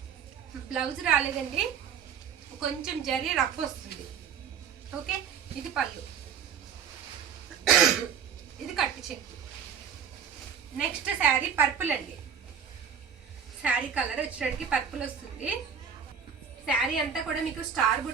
బ్లౌజ్ రాలేదండి, కొంచెం జరీ రఫ్ వస్తుంది. ఓకే, ఇది పళ్ళు, ఇది కట్టు చెక్కు. నెక్స్ట్ శారీ పర్పుల్ అండి. శారీ కలర్ వచ్చేటికి పర్పుల్ వస్తుంది. శారీ అంతా కూడా మీకు స్టార్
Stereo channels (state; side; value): quieter; left; 7.4 dB